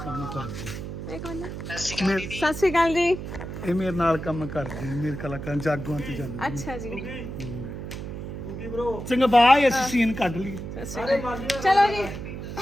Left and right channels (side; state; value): right; noise; hum, 8 dB below the sound